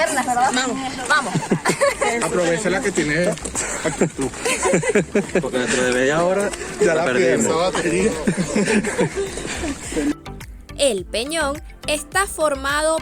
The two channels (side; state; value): both; identical; correlation 1.00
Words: ¿verdad? Vamos. Aprovecha la que tiene actitud. Porque dentro de media hora ya la perdimos. El peñón está formado